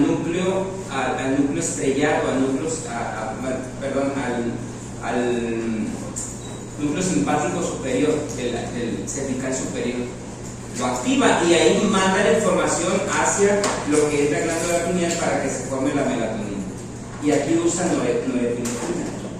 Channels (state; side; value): identical; both; correlation 1.00